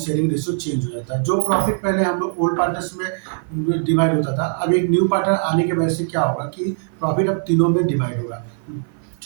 रेशियो चेंज हो जाता है। जो प्रॉफिट पहले हम लोग ओल्ड पार्टनर्स में डिवाइड होता था, अब एक न्यू पार्टनर आने की वजह से क्या होगा कि प्रॉफिट अब तीनों में डिवाइड होगा।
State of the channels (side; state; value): left; silent; 57 dB below the other